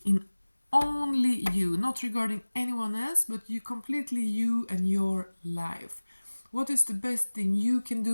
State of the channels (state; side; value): inverted; both; correlation -1.00